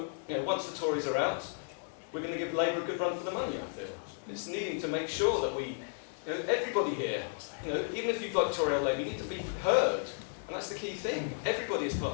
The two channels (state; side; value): silent; right; digital silence